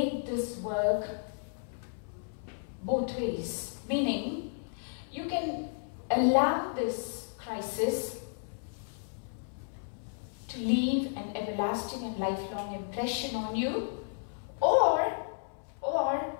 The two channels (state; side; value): silent; right; 56 dB below the other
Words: this work both ways. Meaning, you can allow this crisis to leave an everlasting and lifelong impression on you, or